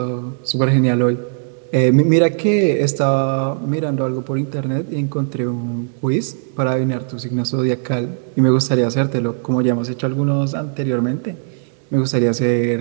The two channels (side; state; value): left; silent; digital silence